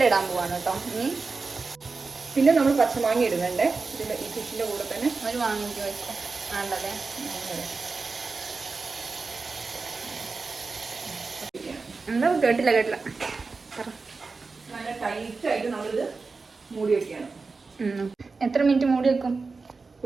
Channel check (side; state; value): left; quieter; 4.2 dB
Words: ഇടാൻ പോവാണ് കേട്ടോ. ഇനി പിന്നെ നമ്മൾ പച്ചമാങ്ങ ഇടുന്നുണ്ട് ഇതിന്റെ ഈ ഫിഷിന്റെ കൂടെ തന്നെ. ഒരു മാങ്ങ വെച്ചോ. വേണ്ടല്ലേ? എന്താ കേട്ടില്ല നല്ല ടൈറ്റ് ആയിട്ട് നമ്മളിത് മൂടി വെക്കുകയാണ്. എത്ര മിനിറ്റ് മൂടി വെക്കും?